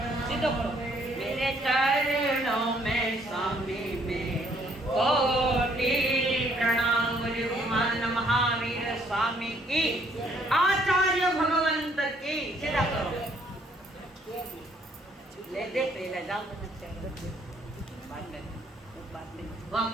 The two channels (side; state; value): both; normal; correlation 0.65